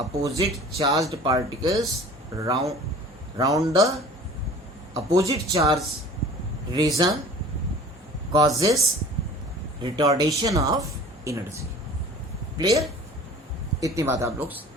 charged particles round the opposite charge region causes retardation of energy. Clear? इतनी बात आप लोग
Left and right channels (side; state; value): both; normal; correlation 0.44